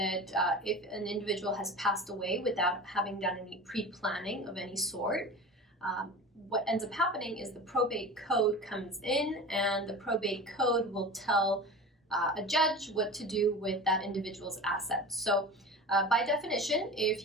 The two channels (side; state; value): both; normal; correlation 0.33